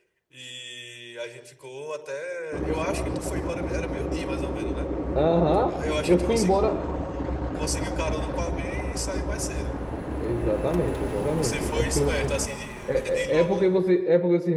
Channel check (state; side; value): identical; both; correlation 1.00